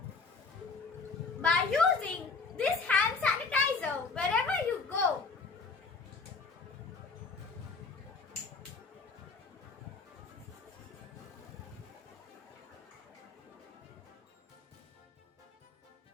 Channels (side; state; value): right; quieter; 4.3 dB